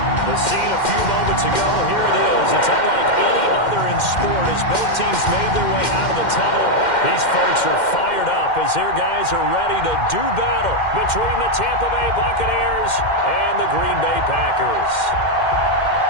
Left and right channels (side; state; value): right; late; 2.1 ms